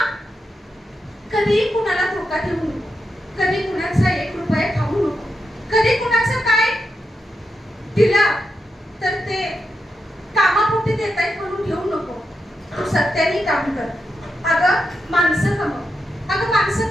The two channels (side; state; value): both; normal; correlation 0.86